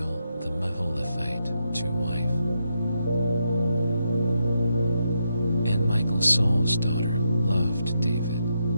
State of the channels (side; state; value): both; inverted; correlation -0.83